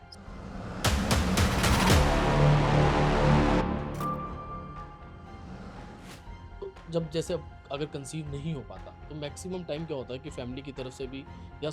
तो जब जैसे अगर कंसीव नहीं हो पाता तो मैक्सिमम टाइम क्या होता है कि फैमिली की तरफ से भी या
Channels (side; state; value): both; identical; correlation 1.00